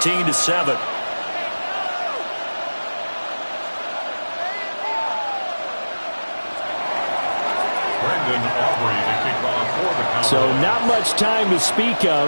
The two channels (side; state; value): both; inverted; correlation -1.00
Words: So not much time to speak